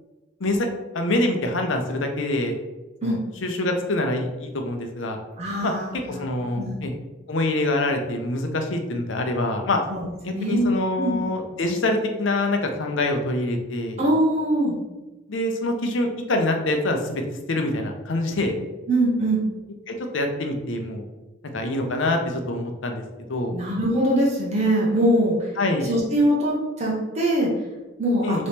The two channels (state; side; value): normal; both; correlation 0.41